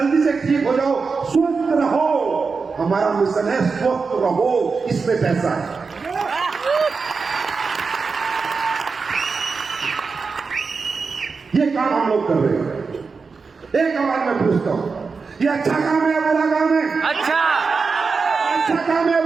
से ठीक हो जाओ, स्वस्थ रहो। हमारा मिशन है स्वस्थ रहो, इसमें पैसा है। ये काम हम लोग कर रहे हैं। एक आवाज में पूछता हूं, ये अच्छा काम है या बुरा काम है? अच्छा काम है,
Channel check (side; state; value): left; quieter; 4.8 dB